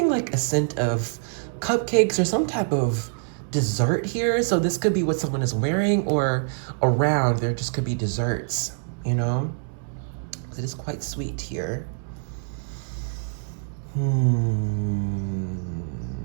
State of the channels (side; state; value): left; silent; digital silence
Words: like a scent of cupcakes or some type of dessert here. So this could be what someone is wearing, or around there just could be desserts, you know? It is quite sweet here.